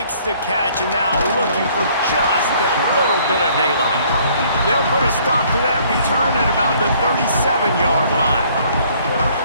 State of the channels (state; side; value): inverted; both; correlation -0.60